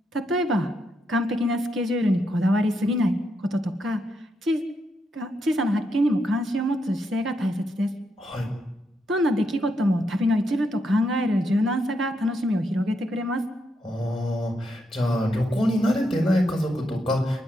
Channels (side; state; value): both; normal; correlation 0.80